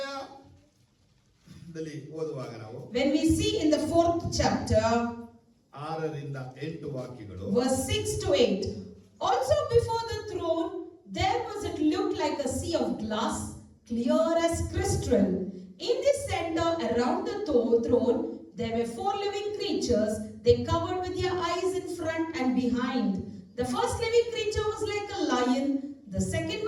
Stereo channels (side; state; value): both; identical; correlation 1.00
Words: ಓದುವಾಗ ನಾವು when we see in the 4th chapter 6ರಿಂದ 8 ವಾಕ್ಯಗಳು. verse 6 to 8. Also before the throne there was it looked like a sea of glass, clear as crystal. In the center around the throne there were 4 living creatures. They covered with their eyes in front and behind. The first living creature was like a lion, the second